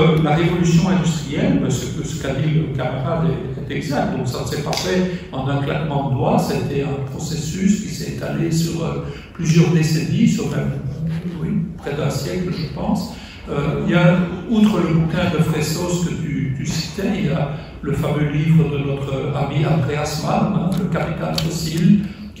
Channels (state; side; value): identical; both; correlation 1.00